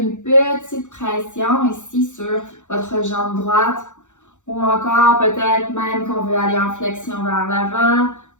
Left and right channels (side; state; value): right; late; 0.85 ms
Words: petite pression ici sur votre jambe droite. Ou encore, peut-être même qu'on veut aller en flexion vers l'avant,